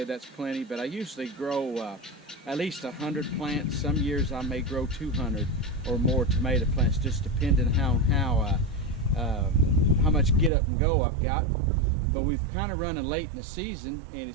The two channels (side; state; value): left; drops out; at 10.5 s